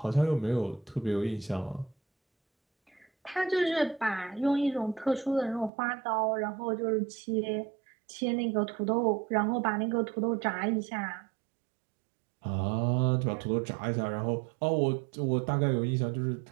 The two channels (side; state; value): left; drops out; at 5.7 s